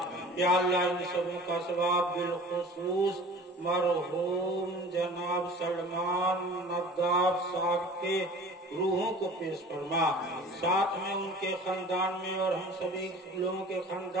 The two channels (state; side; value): normal; both; correlation 0.43